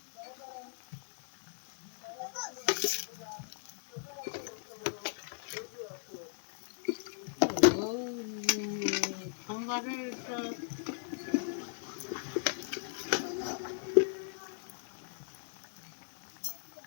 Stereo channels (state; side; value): silent; right; digital silence